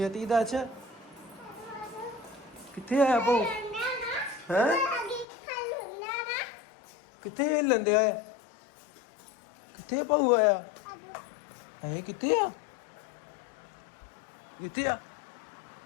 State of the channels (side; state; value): right; drops out; at 5.2 s